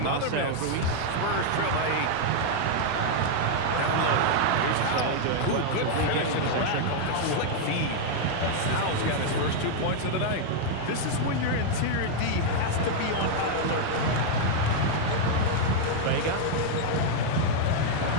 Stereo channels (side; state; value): both; different; correlation 0.00